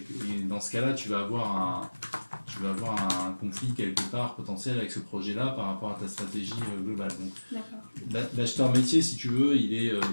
dans ce cas-là tu vas avoir un conflit quelque part potentiel avec ce projet-là par rapport à ta stratégie globale. Donc, l'acheteur métier, si tu veux, il est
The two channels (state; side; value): inverted; both; correlation -1.00